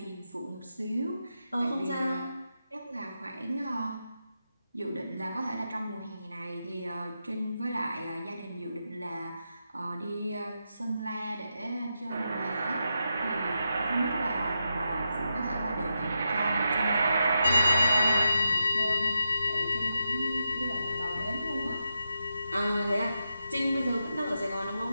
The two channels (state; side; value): inverted; both; correlation -0.86